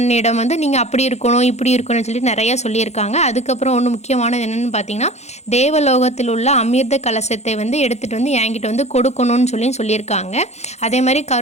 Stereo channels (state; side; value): late; right; 0.32 ms